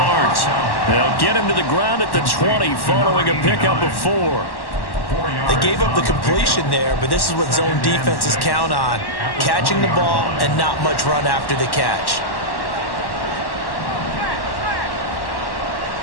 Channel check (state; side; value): late; right; 1.1 ms